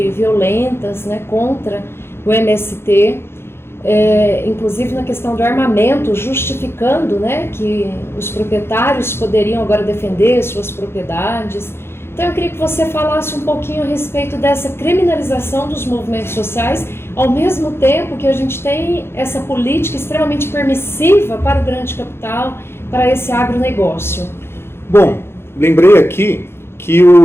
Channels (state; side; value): late; right; 0.12 ms